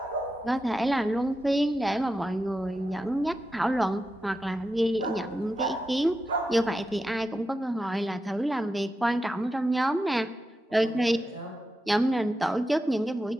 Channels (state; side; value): normal; both; correlation 0.89